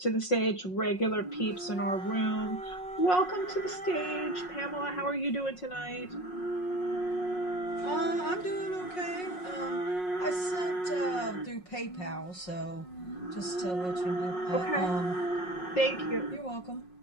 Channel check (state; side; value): late; right; 5.5 ms